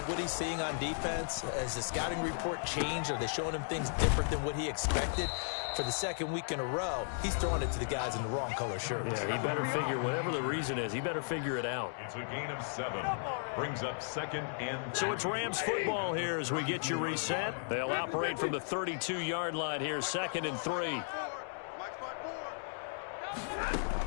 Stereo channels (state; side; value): silent; right; digital silence